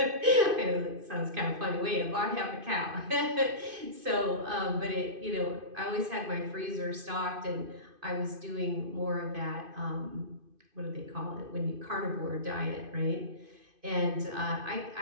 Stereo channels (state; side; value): late; left; 2.5 ms